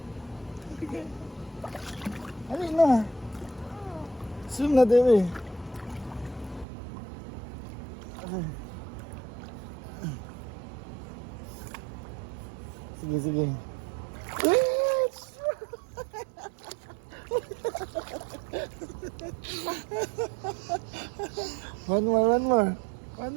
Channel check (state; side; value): drops out; left; at 6.7 s